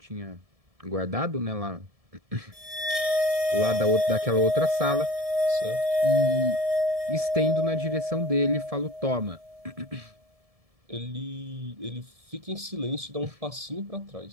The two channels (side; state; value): left; late; 1.7 ms